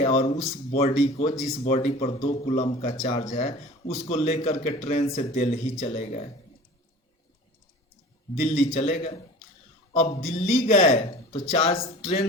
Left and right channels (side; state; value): both; normal; correlation 0.42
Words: और उस बॉडी को, जिस बॉडी पर 2 कूलम का चार्ज है, उसको लेकर के ट्रेन से दिल्ली चले गए, दिल्ली चले गए। अब दिल्ली गए तो चार्ज